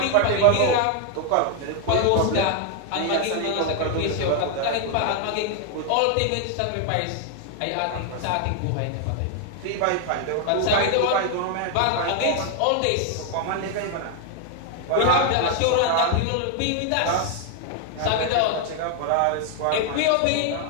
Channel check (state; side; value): different; both; correlation 0.01